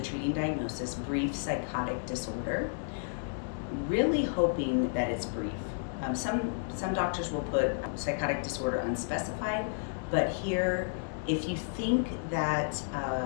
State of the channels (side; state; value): right; silent; digital silence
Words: diagnosis, brief psychotic disorder, really hoping that it's brief. Some doctors will put psychotic disorder unspecified, but here, if you think that